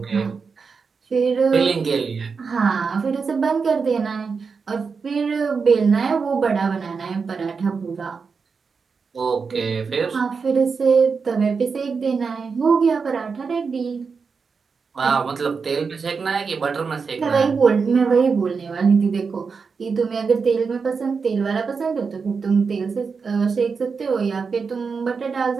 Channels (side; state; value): left; quieter; 5.2 dB